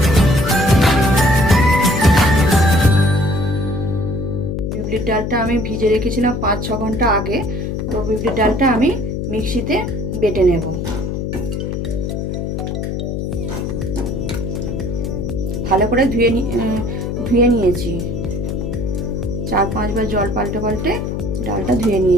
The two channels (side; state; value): left; noise; hum, 3 dB below the sound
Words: বিউলির ডালটা আমি ভিজে রেখেছিলাম 5-6 ঘন্টা আগে। তো বিউলির ডালটা আমি মিক্সিতে বেটে নেব। ভালো করে ধুয়ে নিয়েছি। 4-5 বার জল পাল্টে পাল্টে ডালটা ধুয়ে